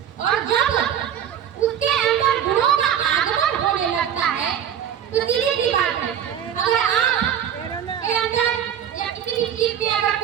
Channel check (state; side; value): quieter; left; 9.3 dB